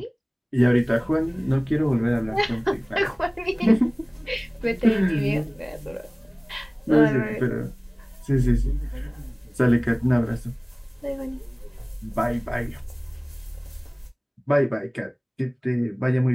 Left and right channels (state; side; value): identical; both; correlation 1.00